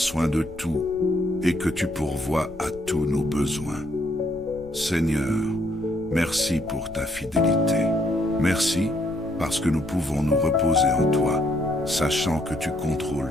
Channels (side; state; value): left; noise; rumble, 18 dB below the sound